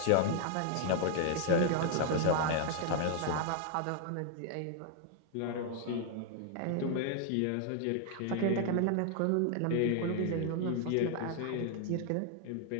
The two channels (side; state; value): both; different; correlation 0.00